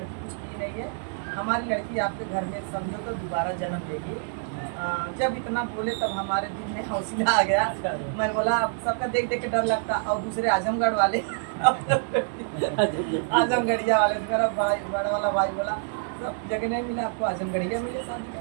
कुछ की नहीं है, हमारी लड़की आपके घर में समझो तो दोबारा जन्म लेगी। जब इतना बोले तब हमारे दिल में हौसला आ गया। मैं बोला अब सबका देख देख के डर लगता, और दूसरे आजमगढ़ वाले आजमगढ़िया वाले तो मेरा भाई बड़ा वाला भाई बोला सब जगह नहीं मिला आपको, आजमगढ़िया मिले शादी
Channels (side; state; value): left; silent; 59 dB below the other